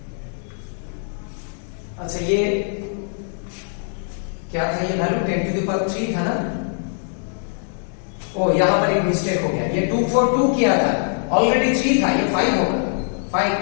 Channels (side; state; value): right; silent; 64 dB below the other